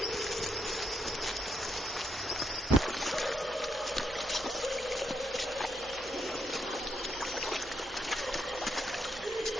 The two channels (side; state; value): both; normal; correlation 0.79